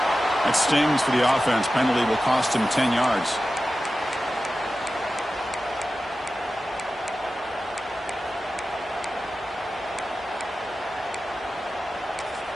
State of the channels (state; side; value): normal; both; correlation 0.94